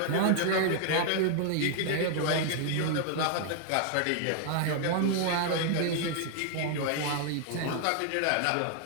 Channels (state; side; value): different; both; correlation 0.00